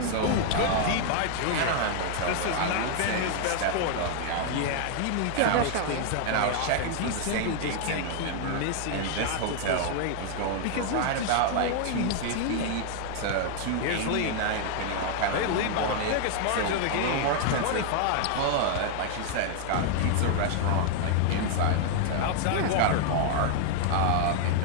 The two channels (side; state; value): both; different; correlation 0.00